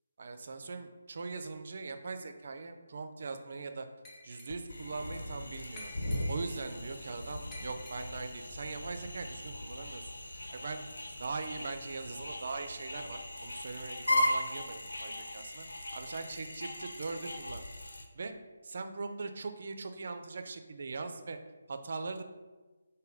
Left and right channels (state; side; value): inverted; both; correlation -0.88